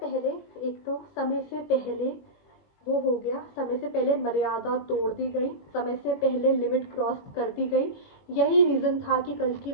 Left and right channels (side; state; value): right; late; 21 ms